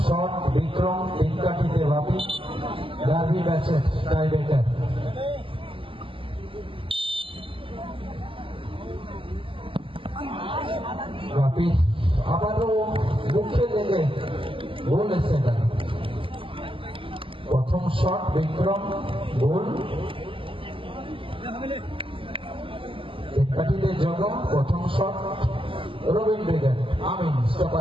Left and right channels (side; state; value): left; late; 0.25 ms